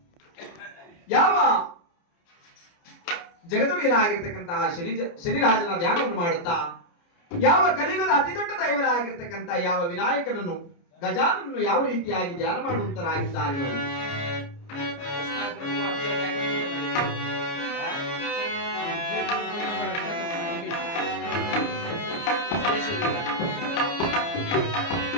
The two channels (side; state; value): right; late; 29 ms